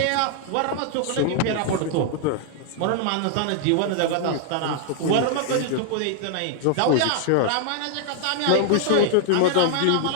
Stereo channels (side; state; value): both; different; correlation 0.00